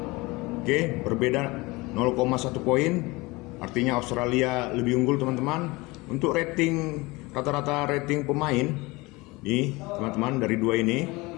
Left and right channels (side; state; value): right; quieter; 23.2 dB